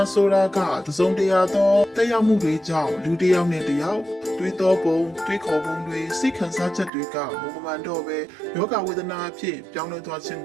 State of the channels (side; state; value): left; drops out; at 6.9 s